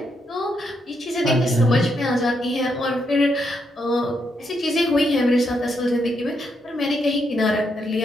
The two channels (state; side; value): normal; both; correlation 0.79